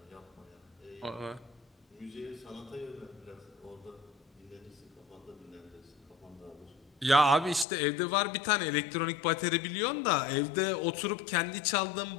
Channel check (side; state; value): right; drops out; at 7.7 s